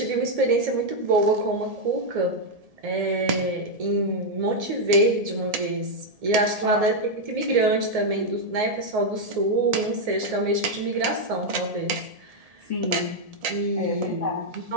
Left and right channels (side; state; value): left; late; 1.7 ms